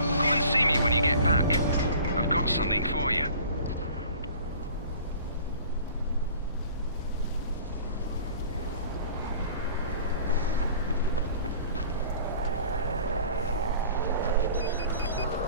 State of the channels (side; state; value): both; inverted; correlation -0.46